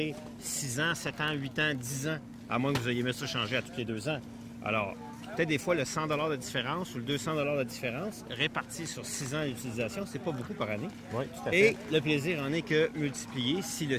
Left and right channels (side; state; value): both; identical; correlation 1.00